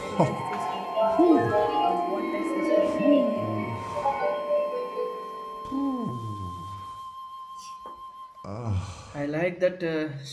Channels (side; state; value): both; identical; correlation 1.00